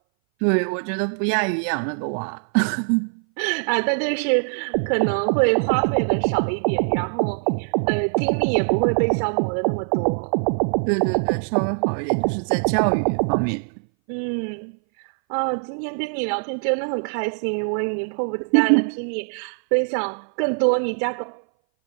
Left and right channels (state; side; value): silent; left; 60 dB below the other